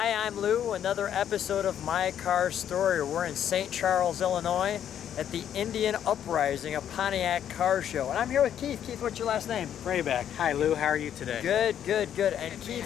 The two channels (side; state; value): right; quieter; 9.8 dB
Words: I'm Lou. Another episode of My Car Story. We're in St. Charles, Illinois at the Indian Uprising, a Pontiac car show. And I'm here with Keith. Keith, what's your last name? Vrabec. Hi Lou, how are you today? Good, good, good. And